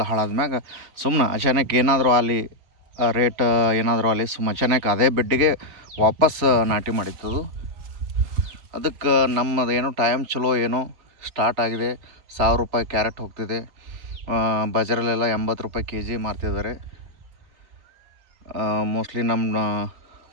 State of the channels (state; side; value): late; left; 3.7 ms